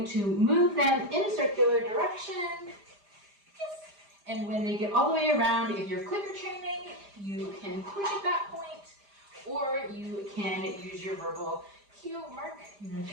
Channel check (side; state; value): left; late; 5.0 ms